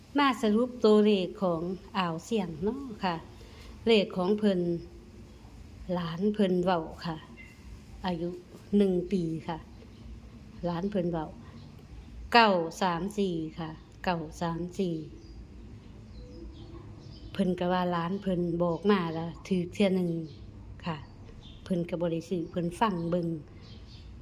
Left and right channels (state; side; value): identical; both; correlation 1.00